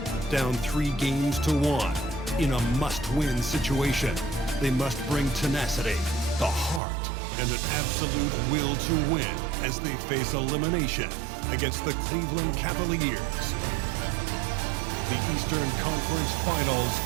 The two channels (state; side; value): drops out; left; at 6.8 s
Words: Down 3 games to 1 in a must-win situation. They must bring tenacity, the heart, and an absolute will to win as they face elimination against the Cleveland Cavaliers. The Eastern Conference Finals